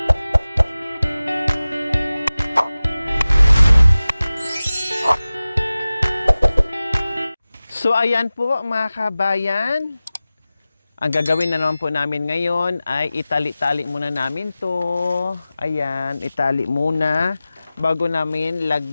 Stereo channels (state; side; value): inverted; both; correlation -0.97